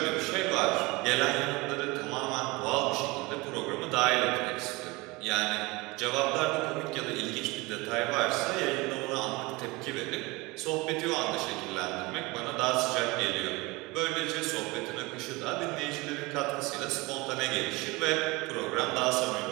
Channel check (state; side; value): quieter; left; 23.7 dB